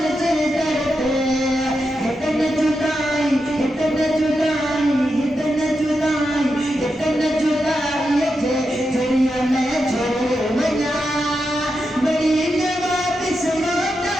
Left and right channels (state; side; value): normal; both; correlation 0.87